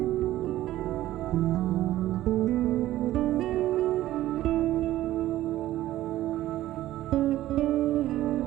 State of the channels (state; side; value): quieter; left; 14.6 dB